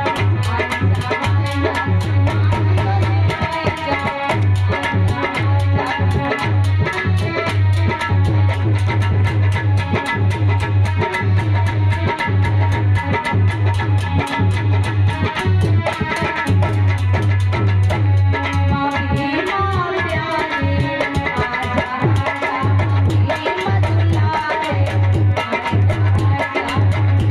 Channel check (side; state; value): both; identical; correlation 1.00